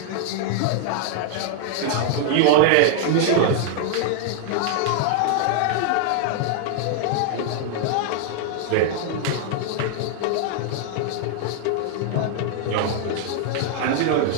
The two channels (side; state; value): both; different; correlation 0.00